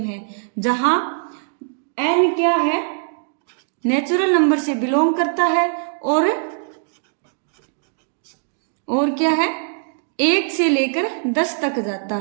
है। जहां n क्या है, नेचुरल नंबर से बिलोंग करता है, और क्या है, 1 से लेकर 10 तक जाता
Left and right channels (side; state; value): left; silent; digital silence